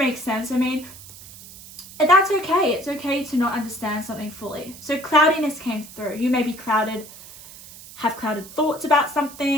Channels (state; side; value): noise; right; hiss, 17 dB below the sound